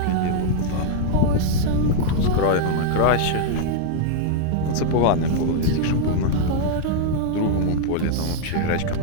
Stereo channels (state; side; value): different; both; correlation 0.00